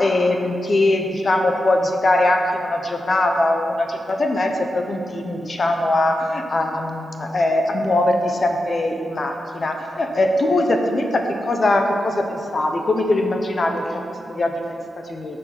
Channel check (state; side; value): normal; both; correlation 0.89